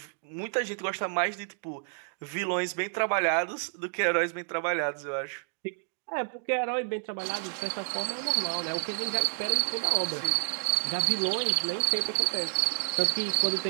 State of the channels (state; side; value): silent; left; digital silence